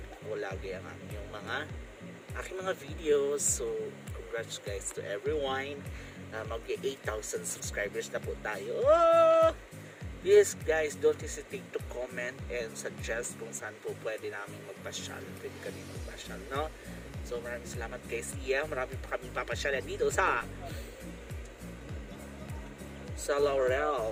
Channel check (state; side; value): identical; both; correlation 1.00